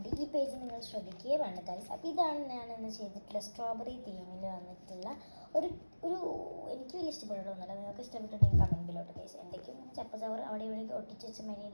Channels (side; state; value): both; inverted; correlation -1.00